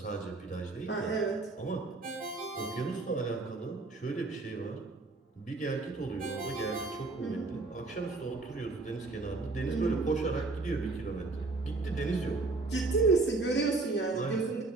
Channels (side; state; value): left; quieter; 3.5 dB